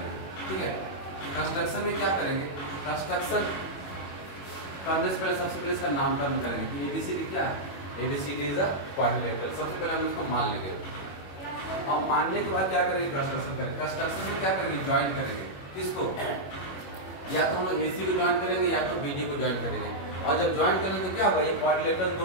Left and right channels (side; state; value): right; late; 21 ms